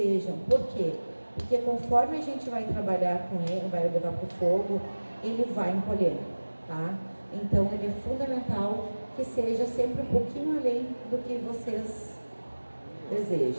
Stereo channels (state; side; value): inverted; both; correlation -1.00